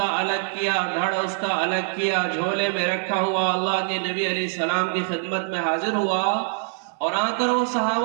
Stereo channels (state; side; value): silent; left; 63 dB below the other